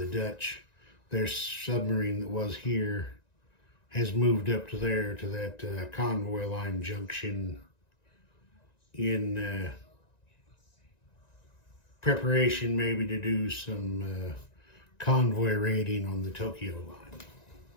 Dutch, their submarine that was here has moved up to there, to that convoy line junction in preparation maybe to do some convoy raiding on the Tokyo line.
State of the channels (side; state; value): right; late; 1.9 ms